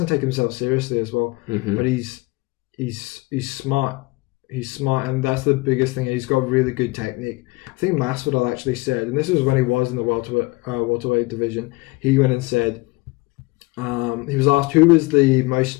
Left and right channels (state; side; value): quieter; right; 23.3 dB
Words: take himself seriously as well, but he's smart. He's smart, and that's the biggest thing. He's got really good technique. I think Masvidal actually said, and this was when he was in the welterweight division, he went and said, he was asked who was the